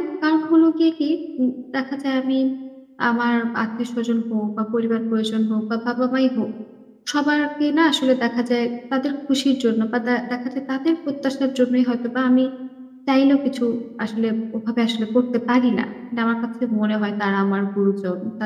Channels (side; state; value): both; identical; correlation 1.00